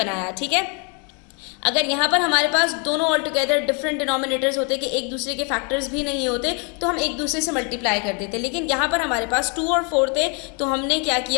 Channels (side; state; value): right; quieter; 35.5 dB